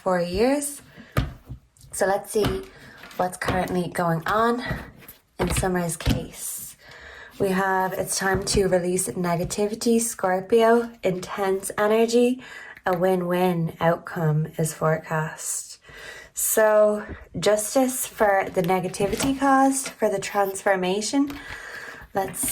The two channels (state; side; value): identical; both; correlation 1.00